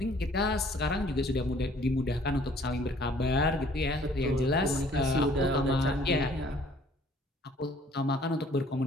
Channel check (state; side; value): normal; both; correlation 0.57